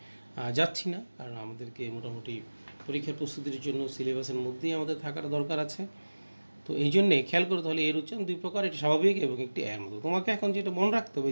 যাচ্ছি না, কারণ আমাদেরকে মোটামুটি পরীক্ষার প্রস্তুতির জন্য সিলেবাসের মধ্যেই আমাদের থাকার দরকার আছে। তো এই জন্যে খেয়াল করে তাহলে এর উচ্চারণ দুই প্রকার, একটি স্বাভাবিক এবং একটি এর মতো। তোমাকে এখন যেটা মনে রাখতে হবে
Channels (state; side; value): inverted; both; correlation -1.00